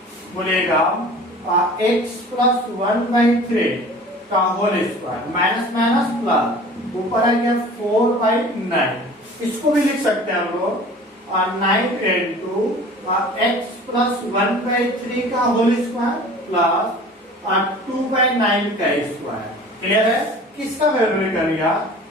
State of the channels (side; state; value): both; normal; correlation 0.43